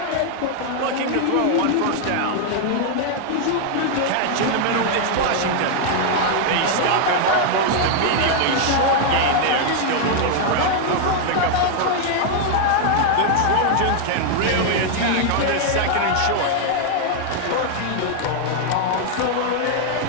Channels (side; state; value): both; different; correlation 0.00